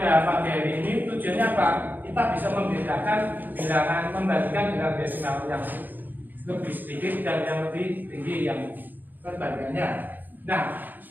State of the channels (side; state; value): left; late; 0.087 ms